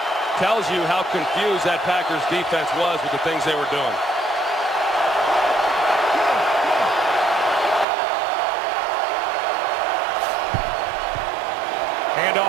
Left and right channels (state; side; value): drops out; left; at 7.9 s